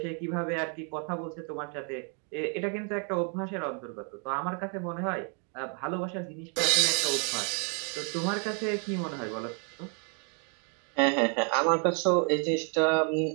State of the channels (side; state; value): left; quieter; 39.9 dB